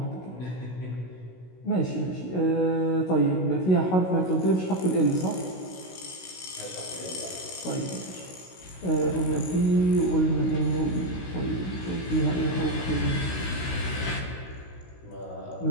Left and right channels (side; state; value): right; late; 16 ms